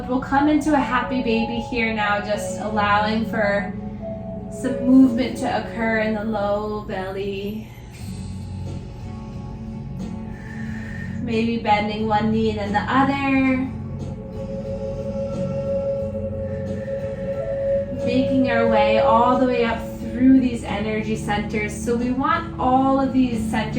we'll come into a happy baby here now, just allowing for some movement to occur in the low belly. Maybe bending one knee and then the other. Making our way all the way up through these energy centers. So we want all of these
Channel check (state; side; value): identical; both; correlation 1.00